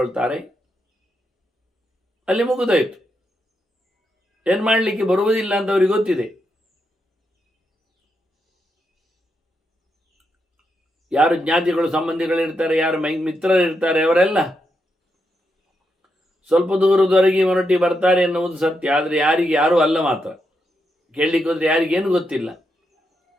ಅಲ್ಲಿ ಮುಗಿದೋಯ್ತು. ಏನು ಮಾಡಲಿಕ್ಕೆ ಬರುವುದಿಲ್ಲ ಅಂತ ಅವ್ರಿಗೆ ಗೊತ್ತಿದೆ. ಯಾರು ಜ್ಞಾತಿಗಳು ಸಂಬಂಧಿಗಳಿರ್ತಾರೆ, ಯಾರು ಮಿತ್ರರಿರ್ತಾರೆ, ಅವರೆಲ್ಲ ಸ್ವಲ್ಪ ದೂರದವರೆಗೆ ಹೊರಟಿ ಬರ್ತಾರೆ ಎನ್ನುವುದು ಸತ್ಯ. ಆದರೆ ಯಾರಿಗೆ ಯಾರೂ ಅಲ್ಲ ಮಾತ್ರ. ಕೇಳಲಿಕ್ಕೆ ಹೋದರೆ ಯಾರಿಗೇನು ಗೊತ್ತಿಲ್ಲ.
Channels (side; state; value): both; normal; correlation 0.83